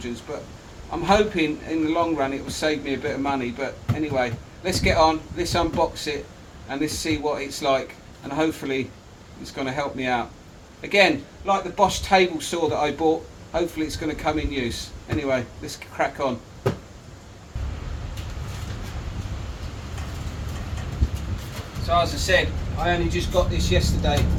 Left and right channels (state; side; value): identical; both; correlation 1.00